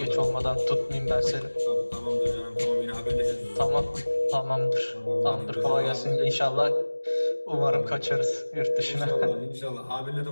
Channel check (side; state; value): both; inverted; correlation -1.00